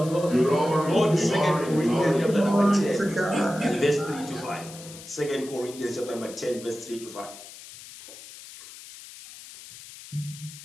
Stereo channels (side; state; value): left; noise; hiss, 16 dB below the sound